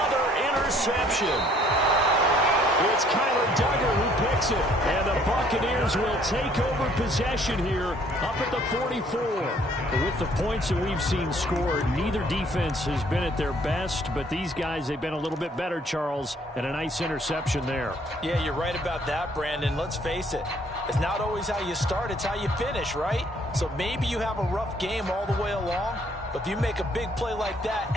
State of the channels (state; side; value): normal; both; correlation 0.62